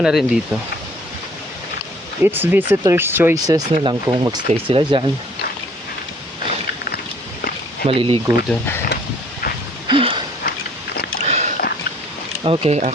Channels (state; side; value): normal; both; correlation 0.58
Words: rin dito. It's visitors choices na lang kung magstay sila dyan. Maliligo dun. Okay,